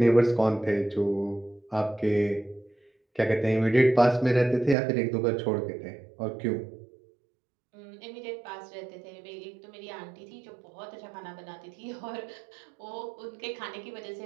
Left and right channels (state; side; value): drops out; left; at 4.8 s